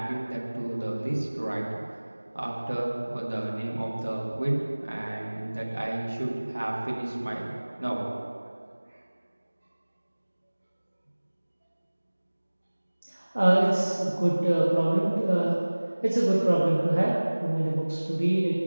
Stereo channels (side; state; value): both; inverted; correlation -1.00